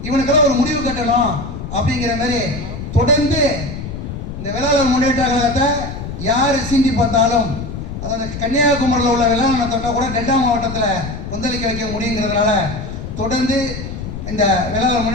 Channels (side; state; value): left; noise; rumble, 8 dB below the sound